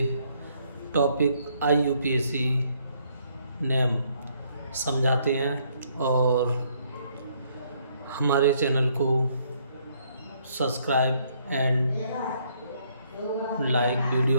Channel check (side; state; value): both; inverted; correlation -0.68